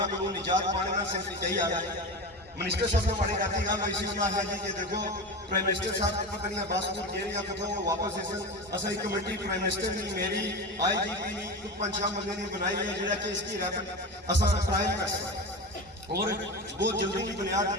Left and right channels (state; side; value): normal; both; correlation 0.25